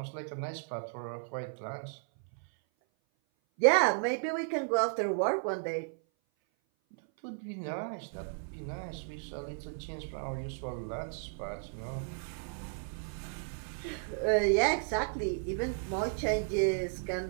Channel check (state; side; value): silent; left; 55 dB below the other